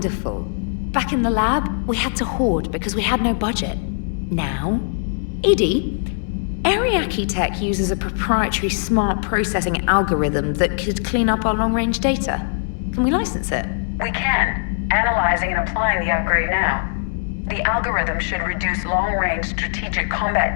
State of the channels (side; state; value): right; silent; digital silence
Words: Back in the lab, we had to hoard because we had no budget. Now, Edie, Ariake Tech uses a proprietary smart processing algorithm that could clean up our long-range data. Can we license it? We can. Analyzing and applying the upgrade now. The algorithm should reduce long-range strategic